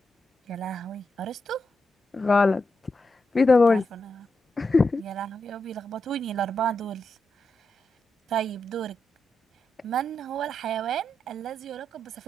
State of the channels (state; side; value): normal; both; correlation 0.86